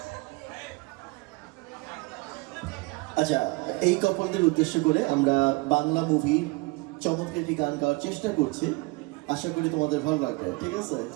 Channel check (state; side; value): quieter; left; 25.7 dB